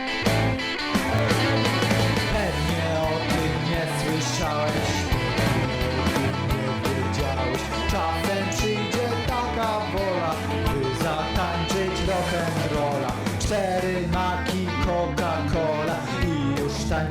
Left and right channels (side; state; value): both; identical; correlation 1.00